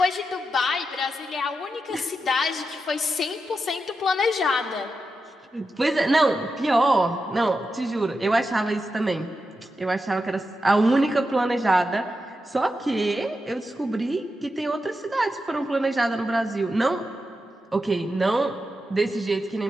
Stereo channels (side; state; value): both; normal; correlation 0.88